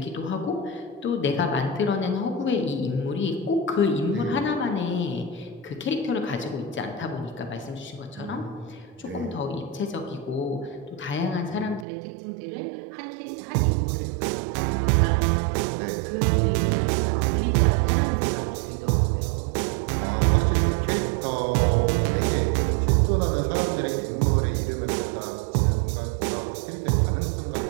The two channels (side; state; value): left; drops out; at 11.9 s